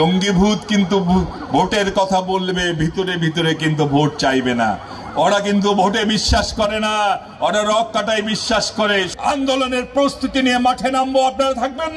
ভূত কিন্তু ভোটের কথা বলবে, ভিতরে ভিতরে কিন্তু ভোট চাইবে না। ওরা কিন্তু ভোটে বিশ্বাস করে না, ওরা রক কাটায় বিশ্বাস করে। আন্দোলনের প্রস্তুতি নিয়ে মাঠে নামবো, আপনারা থাকবেন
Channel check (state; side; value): identical; both; correlation 1.00